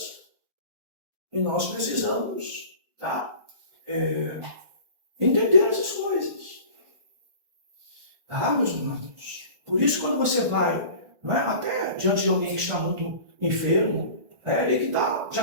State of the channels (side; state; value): left; late; 1.4 ms